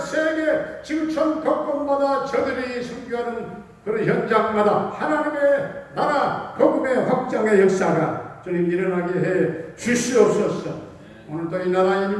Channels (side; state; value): both; identical; correlation 1.00